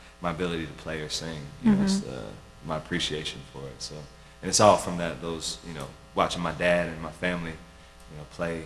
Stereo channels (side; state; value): both; identical; correlation 1.00